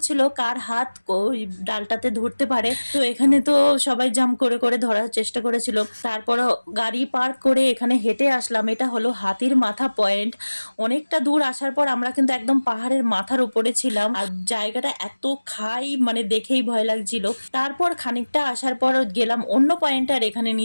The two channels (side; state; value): both; inverted; correlation -1.00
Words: কার হাত ওই ডালটাতে ধরতে পারে। তো এখানে তো সবাই জাম্প করে করে ধরার চেষ্টা করেছিল। তারপর গাড়ি পার্ক করে এখানে হেঁটে আসলাম। এটা হলো হাতির মাথা পয়েন্ট। অনেকটা দূর আসার পর আমরা কিন্তু একদম পাহাড়ের মাথার উপরে ছিলাম। আর জায়গাটা এত খাই, মানে দেখেই ভয় লাগছিল। তারপর খানিকটা আসার পর গেলাম অন্য পয়েন্টে। আর এখানে